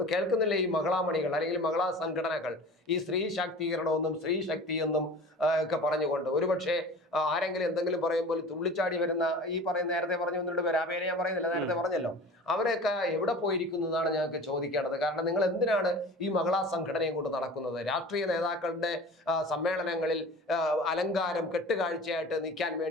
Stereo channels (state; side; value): normal; both; correlation 0.39